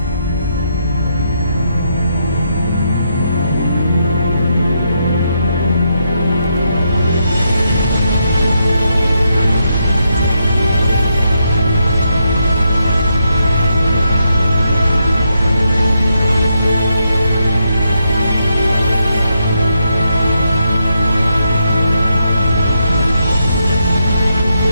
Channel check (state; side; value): inverted; both; correlation -0.80